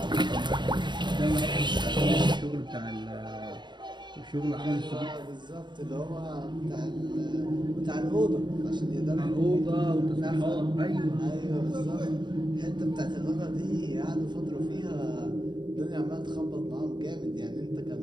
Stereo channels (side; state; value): left; late; 0.22 ms